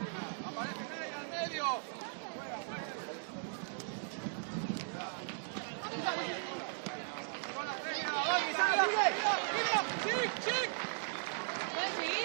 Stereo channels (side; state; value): left; silent; digital silence